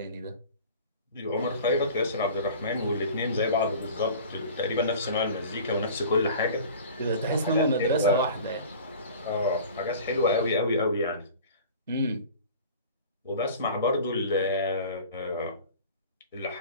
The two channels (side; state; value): both; inverted; correlation -0.42